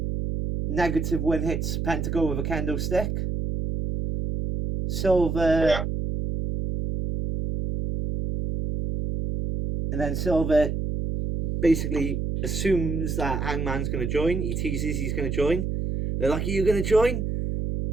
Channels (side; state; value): right; noise; hum, 2 dB below the sound